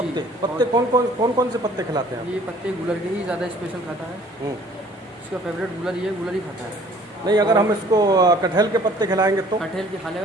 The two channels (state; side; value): normal; both; correlation 0.54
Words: पत्ते कौन से पत्ते खिलाते हैं आप? ये पत्ते गुलर के ही ज़्यादा स्पेशल खाता है। इसका फेवरेट गुलर ये गुलर ही खाता है। नहीं, अगर हम इसको कटहल के पत्ते खिलाएंगे तो? कटहल के खा